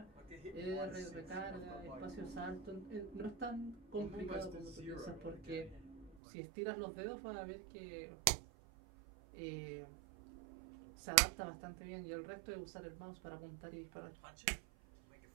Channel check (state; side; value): drops out; left; at 6.2 s